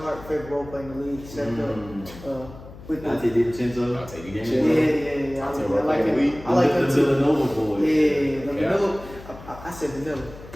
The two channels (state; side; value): noise; left; hum, 17 dB below the sound